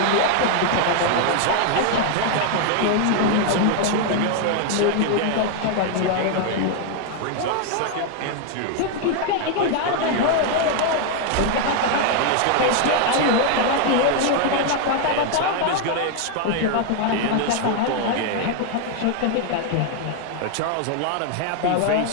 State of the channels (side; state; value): both; different; correlation 0.00